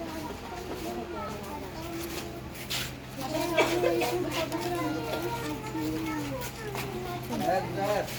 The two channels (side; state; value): both; identical; correlation 1.00